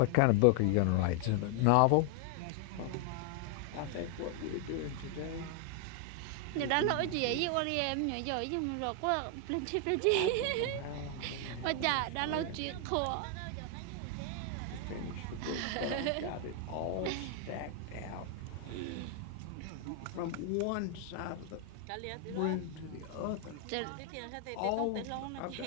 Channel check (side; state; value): both; different; correlation 0.00